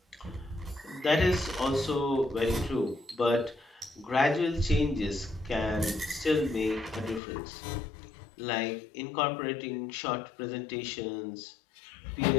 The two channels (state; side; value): drops out; right; at 7.2 s